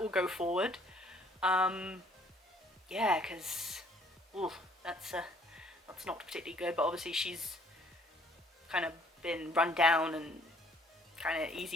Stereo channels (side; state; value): both; normal; correlation 0.60